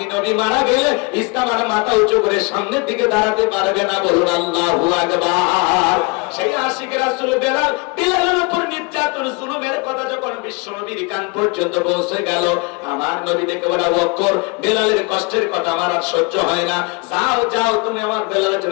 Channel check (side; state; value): right; quieter; 29.4 dB